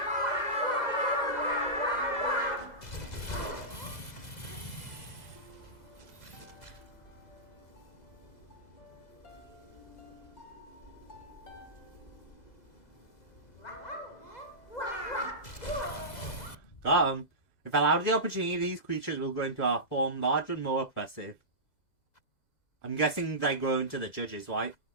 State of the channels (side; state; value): right; late; 2.0 ms